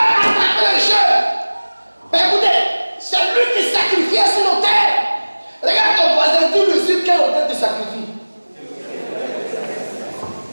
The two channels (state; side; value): inverted; both; correlation -1.00